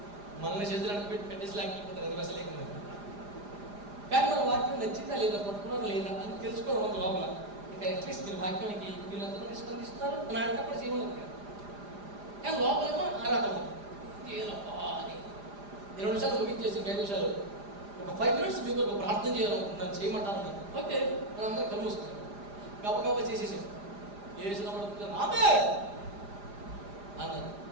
మనల్ని చేతులు అంటే పెట్టేసి లేకపోతారు అది అసలు లేకుండా. కానీ మన వాక్యం నచ్చిందా లేదా పట్టుకున్నారా లేదా అని తెలుసుకోవడం లోపల. ఇంకా అట్లీస్ట్ మీరు వాక్యానికి వీళ్ళందరూ స్పందిస్తున్నారు అని ఆడేటప్పుడు సీన్ ఉండదు. కానీ లోపలేమో ఆరాటం అని 20 నిమిషాలు ముగించేసి 5 నిమిషాలు ఒక 5 minutes మీకు ఒక ప్రార్థన చేయాలనుకుంటున్నాను చేయమంటాను. ఓకే మనం అందరం కళ్ళు మూసుకుంటాం. గబగబా చేసేసాను చేసినప్పుడు ఆమె అన్నారు.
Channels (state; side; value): late; left; 4.9 ms